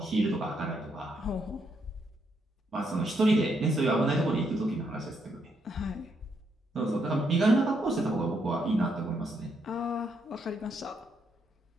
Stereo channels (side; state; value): both; normal; correlation 0.76